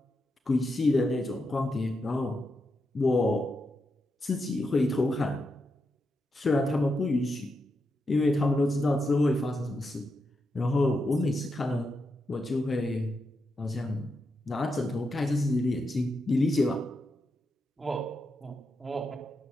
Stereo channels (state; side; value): normal; both; correlation 0.85